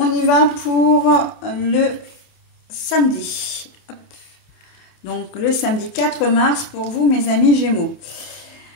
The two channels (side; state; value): right; late; 28 ms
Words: y va pour le samedi. Donc, le samedi 4 mars pour vous, mes amis Gémeaux.